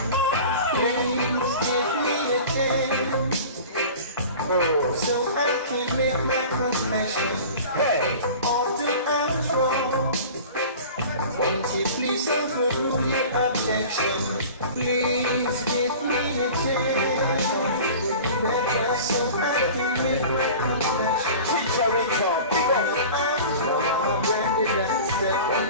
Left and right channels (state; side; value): inverted; both; correlation -0.39